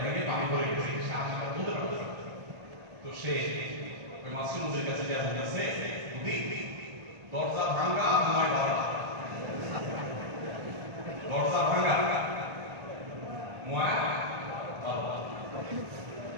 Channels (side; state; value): left; late; 1.4 ms